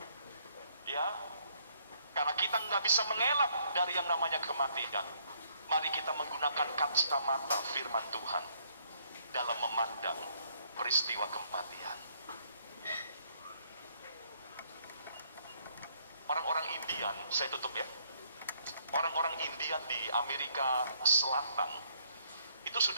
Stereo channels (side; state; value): both; inverted; correlation -0.68